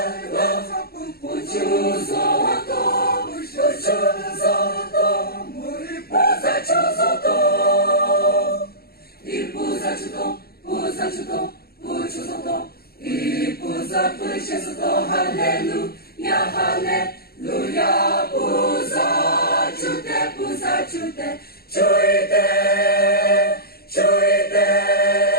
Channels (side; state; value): right; late; 0.45 ms